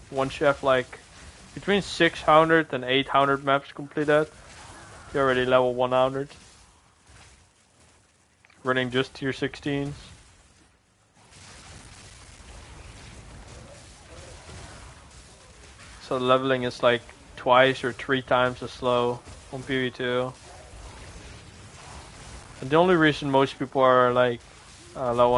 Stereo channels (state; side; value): identical; both; correlation 1.00